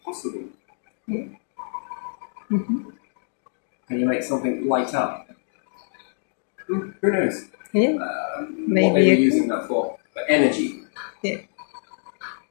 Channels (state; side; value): silent; right; digital silence